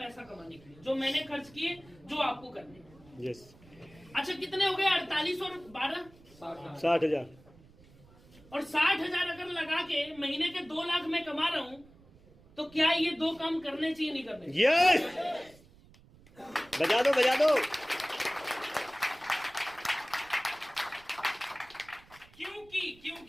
कमाने के लिए, जो मैंने खर्च किए, जो आपको करने हैं। यस अच्छा, कितने हो गए? 48 और 12 60,000। और 60,000 अगर लगा के महीने के 2 लाख में कमा रहा हूं, तो क्या ये 2 काम करने चाहिए, नहीं करने? यस बजा दो बजा दो।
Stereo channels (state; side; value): noise; right; rumble, 25 dB below the sound